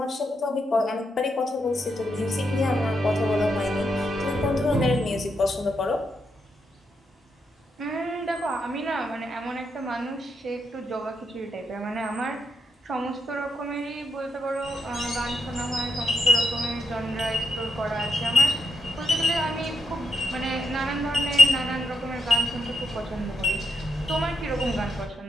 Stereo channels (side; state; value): both; normal; correlation 0.81